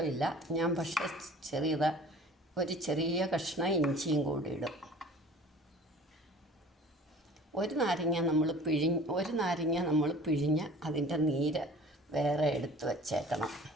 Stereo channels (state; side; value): normal; both; correlation 0.46